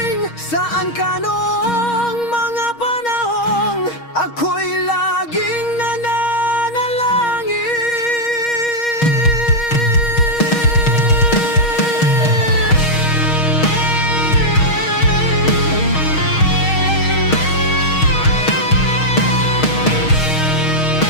Saan ka noong mga panahong ako'y laging nananalangin?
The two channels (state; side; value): late; right; 6.4 ms